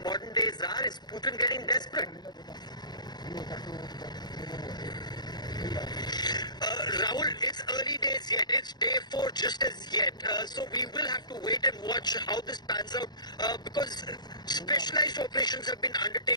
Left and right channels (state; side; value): late; right; 0.20 ms